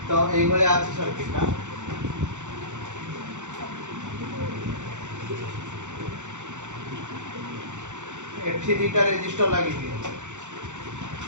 तो এই বলে আছে সার্কিটটা এফটি দুইটা রেজিস্টার লাগিয়ে দিই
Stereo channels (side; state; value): left; late; 0.85 ms